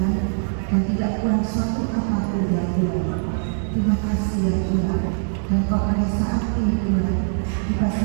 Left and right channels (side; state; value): left; silent; digital silence